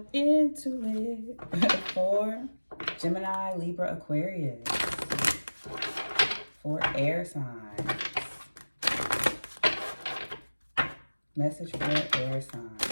into it. For Gemini, Libra, Aquarius. For air signs. Message for air signs.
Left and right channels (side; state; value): both; inverted; correlation -1.00